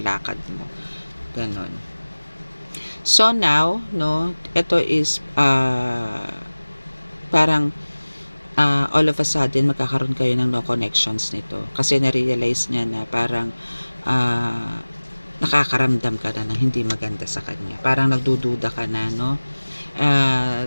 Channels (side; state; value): both; inverted; correlation -1.00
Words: lakad mo. Ganon. So now, no, ito is parang all of a sudden magkakaroon kayo ng no connections nito. Kasi na-realize niya na parang nakakaramdam ka na ng hindi maganda sa kanya. Parang nagdududa ka na, no?